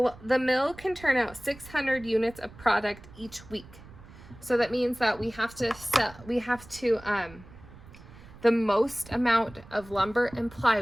mill can turn out 600 units of product each week. So that means that we have to the most amount of lumber and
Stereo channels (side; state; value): right; noise; rumble, 20 dB below the sound